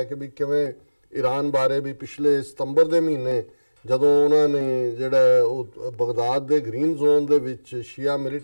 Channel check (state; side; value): inverted; both; correlation -1.00